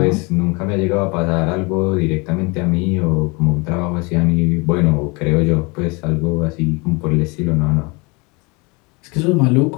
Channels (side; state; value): right; quieter; 28.3 dB